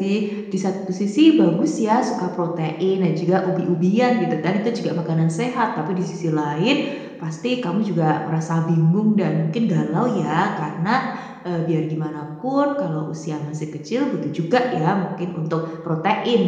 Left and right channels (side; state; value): both; identical; correlation 1.00